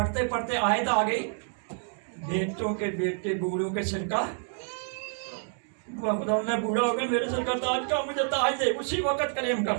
पढ़ते आयत आ गई, बेटों के बेटे बूढ़ों के सिर का। खुदा, मैं बूढ़ा हो गया, मेरे सिर का ताज का मुझे ताज दे। उसी वक्त क्लेम कर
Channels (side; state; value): left; silent; 57 dB below the other